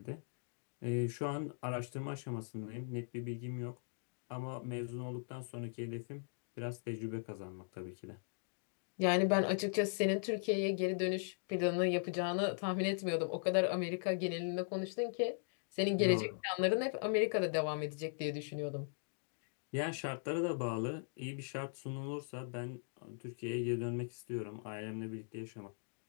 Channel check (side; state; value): right; silent; digital silence